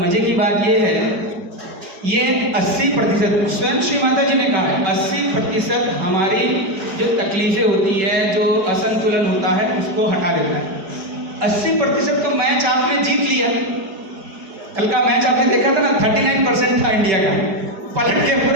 की बात यह है, ये 80% स्वयं श्री माता जी ने कहा है, 80% हमारी जो तकलीफ़ें होती है, जो असंतुलन होता है, उसको हटा देता है। 80% तो मैच आपने जीत लिया। कल का मैच आपने देखा था ना, 39% था इंडिया का, पलट के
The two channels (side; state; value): left; late; 5.2 ms